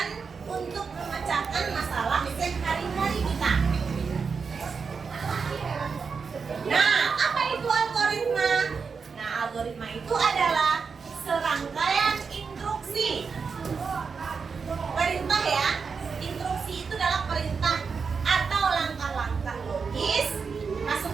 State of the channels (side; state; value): left; quieter; 5.4 dB